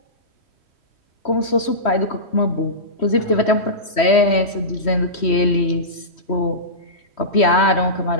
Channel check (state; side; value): late; right; 3.1 ms